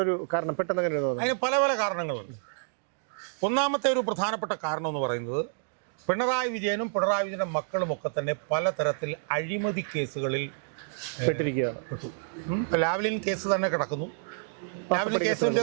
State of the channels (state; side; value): silent; left; digital silence